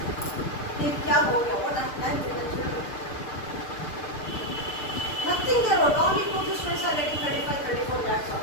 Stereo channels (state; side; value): late; right; 6.7 ms